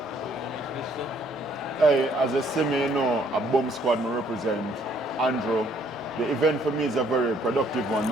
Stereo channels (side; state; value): both; normal; correlation 0.65